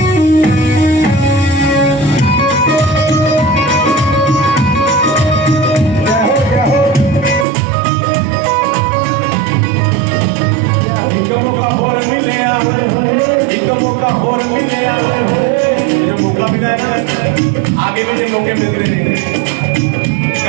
आगे भी जो मौके मिलते रहेंगे।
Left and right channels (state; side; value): drops out; left; at 7.5 s